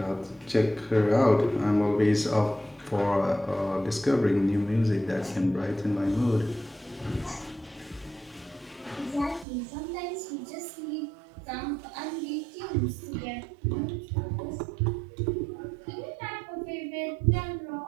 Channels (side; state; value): left; drops out; at 9.5 s